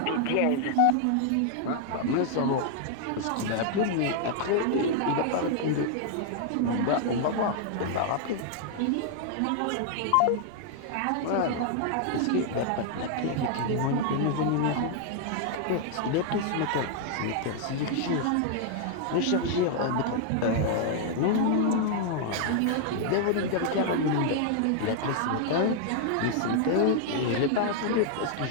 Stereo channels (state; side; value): different; both; correlation 0.00